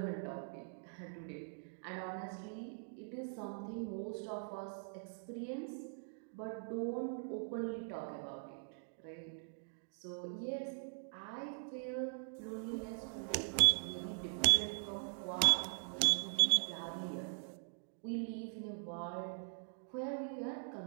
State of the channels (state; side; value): silent; left; digital silence